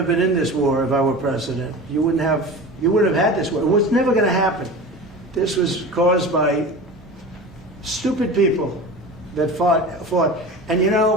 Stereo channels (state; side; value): normal; both; correlation 0.33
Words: been in this war if I were president. You wouldn't have had this war. It was never going to happen. This was caused by stupid people that fought. And you